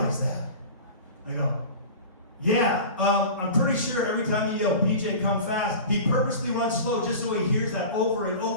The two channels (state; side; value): inverted; both; correlation -0.35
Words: that. I go, yeah, I'm pretty sure every time you yell, BJ, come fast, he purposely runs slow just so he hears that over and